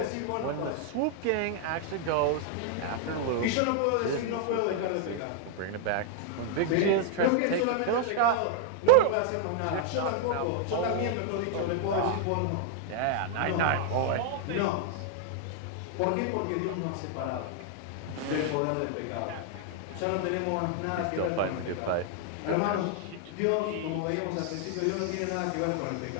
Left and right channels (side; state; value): both; different; correlation 0.00